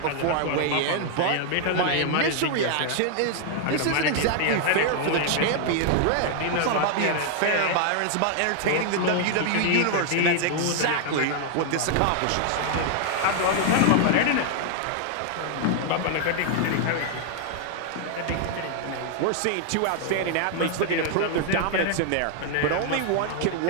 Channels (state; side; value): different; both; correlation 0.00